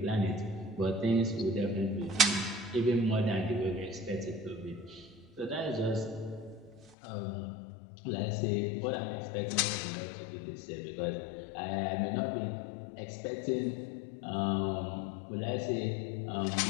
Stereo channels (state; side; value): drops out; right; at 7.0 s